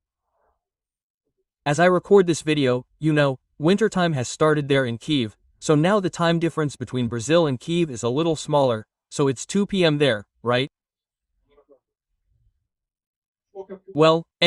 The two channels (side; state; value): both; identical; correlation 1.00